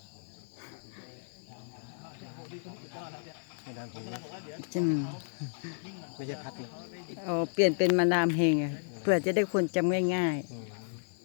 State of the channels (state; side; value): silent; right; 56 dB below the other